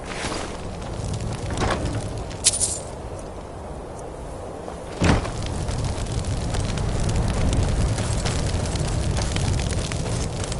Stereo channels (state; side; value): identical; both; correlation 1.00